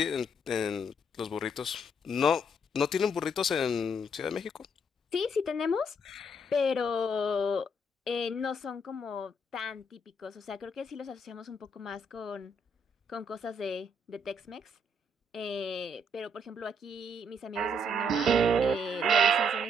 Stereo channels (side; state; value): both; normal; correlation 0.71